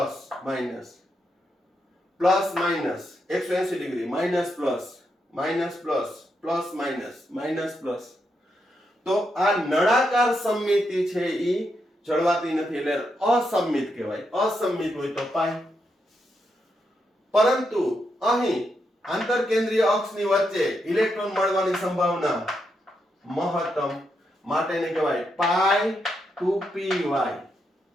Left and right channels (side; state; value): both; normal; correlation 0.82